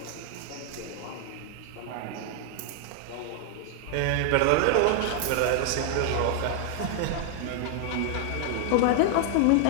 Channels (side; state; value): both; different; correlation 0.00